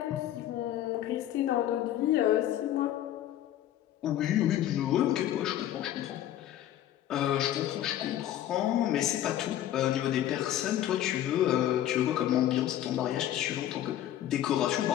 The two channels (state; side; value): quieter; right; 12.2 dB